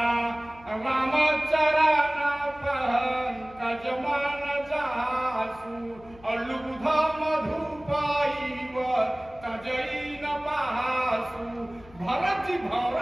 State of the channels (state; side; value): noise; left; hum, 22 dB below the sound